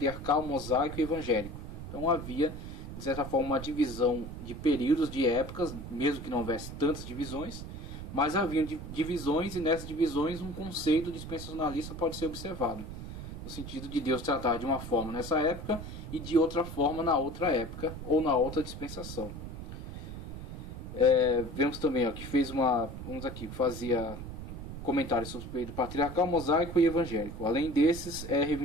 mosaico e evangélico. Então havia, de certa forma, uma divisão de períodos, de épocas, mesmo que não houvesse tantas divisões, mas havia divisões, e nessas divisões um conceito dispensacionalista pode ser observado, no sentido de Deus tratar de uma forma nessa época e de outra forma na outra época ou na outra dispensação. Vemos também que fez que fazia comentários sobre o período patriarcal, mosaico e evangélico. Além desses, é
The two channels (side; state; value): right; noise; rumble, 9 dB below the sound